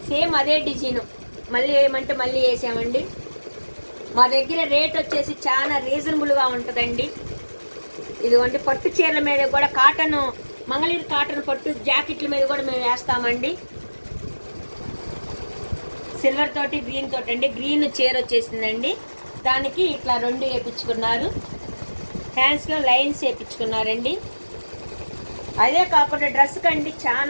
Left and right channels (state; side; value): inverted; both; correlation -1.00